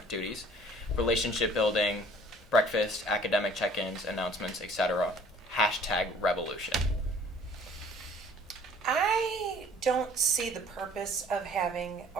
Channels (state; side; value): normal; both; correlation 0.53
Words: duties, relationship building, breakfast, academic check-ins, announcements, etc. #revolution. I don't see the purpose of having